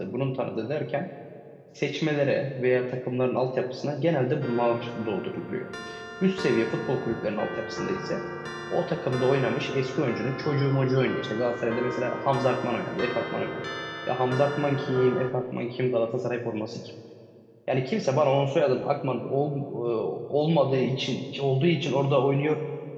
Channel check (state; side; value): identical; both; correlation 1.00